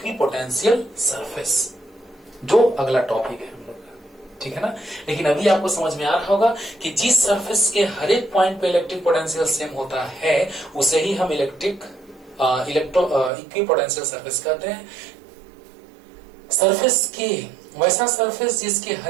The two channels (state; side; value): drops out; left; at 13.3 s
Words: surface, जो अगला टॉपिक है हम लोग का, ठीक है ना। लेकिन अभी आपको समझ में आ रहा होगा कि जिस सरफेस के हर एक पॉइंट पे इलेक्ट्रिक पोटेंशियल सेम होता है उसे ही हम इक्विपोटेंशियल सरफेस कहते हैं। सरफेस के वैसा सरफेस जिसके